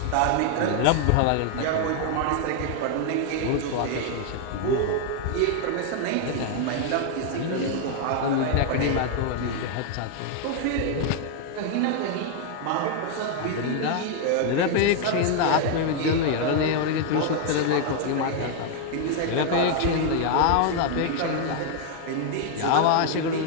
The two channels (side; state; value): both; different; correlation 0.00